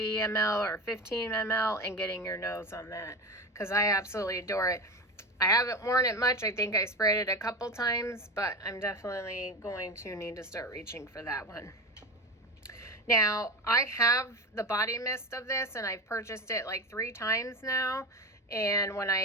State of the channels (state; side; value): normal; both; correlation 0.23